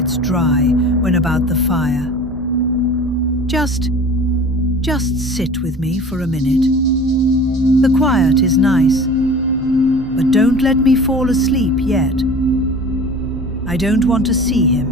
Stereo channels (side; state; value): both; normal; correlation 0.41